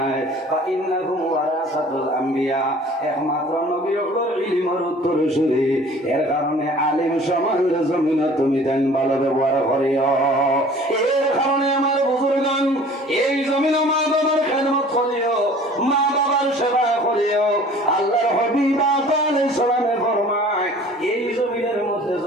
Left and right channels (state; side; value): normal; both; correlation 0.48